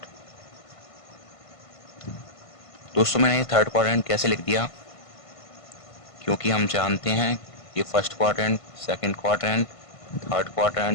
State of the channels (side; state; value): right; late; 1.5 ms